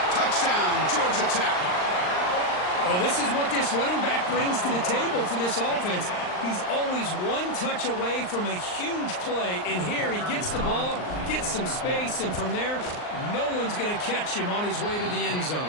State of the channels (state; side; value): late; right; 39 ms